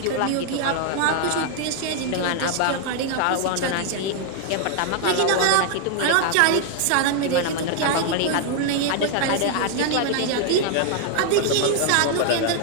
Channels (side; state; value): both; different; correlation 0.00